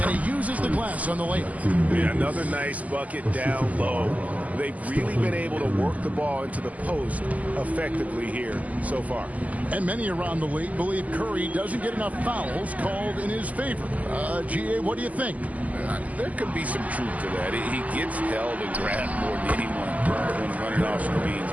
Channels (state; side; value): late; left; 0.075 ms